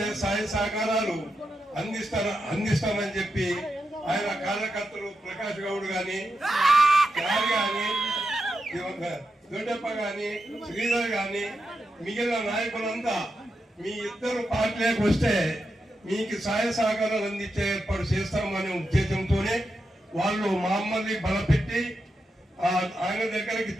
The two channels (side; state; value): both; normal; correlation 0.87